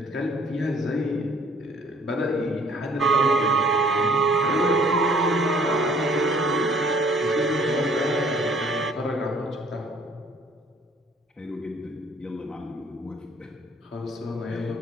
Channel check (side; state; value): both; normal; correlation 0.58